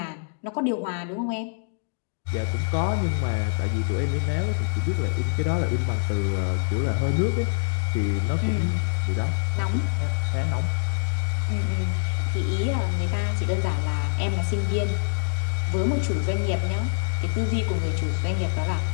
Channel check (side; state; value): right; silent; digital silence